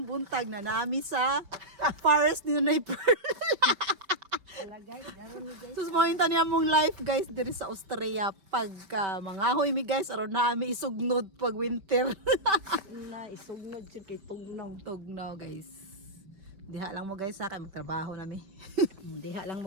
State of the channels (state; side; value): late; left; 5.2 ms